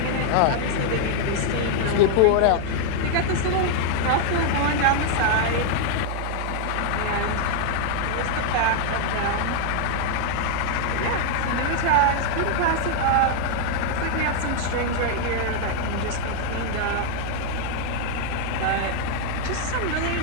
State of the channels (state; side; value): different; both; correlation 0.00